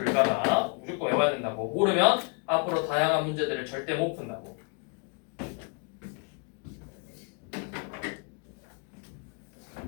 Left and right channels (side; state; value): right; quieter; 36.8 dB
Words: 무조건 외워야 된다고. 모르면 앞으로 다양한 문제들을 절대 못 푼다고.